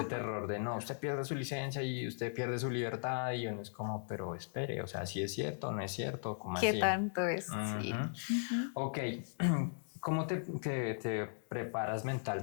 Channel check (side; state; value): right; silent; digital silence